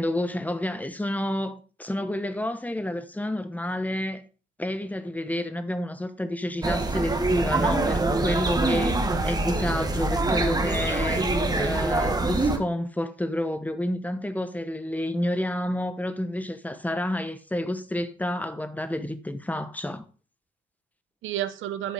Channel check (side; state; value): both; normal; correlation 0.76